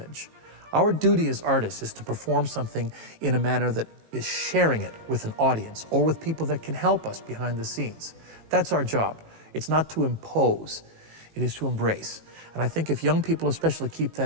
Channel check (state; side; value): late; left; 18 ms